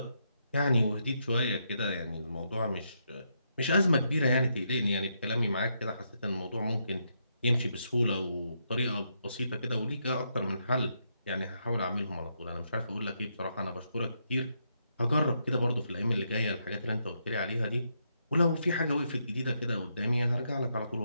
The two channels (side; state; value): both; inverted; correlation -0.79